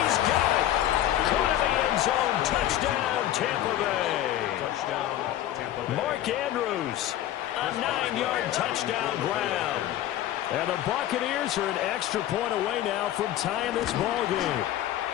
got it. Caught in the end zone. Touchdown, Tampa Bay. Touchdown, Tampa Bay. Mark Andrews, a 9-yard touchdown grab. And the Buccaneers are an extra point away now from tying this ball game.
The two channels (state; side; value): quieter; right; 12.7 dB